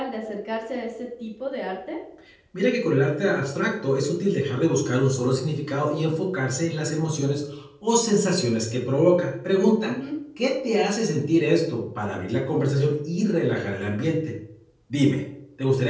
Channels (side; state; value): both; identical; correlation 1.00